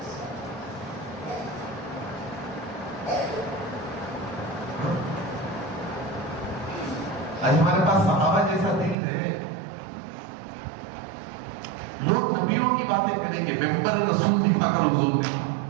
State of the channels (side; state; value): left; drops out; at 9.0 s